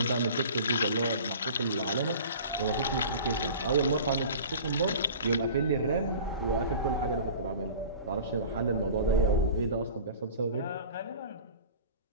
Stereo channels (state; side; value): inverted; both; correlation -0.40